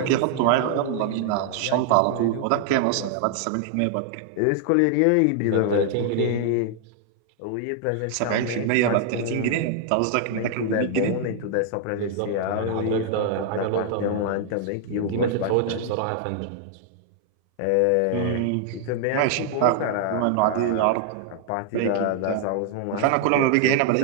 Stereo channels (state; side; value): different; both; correlation 0.00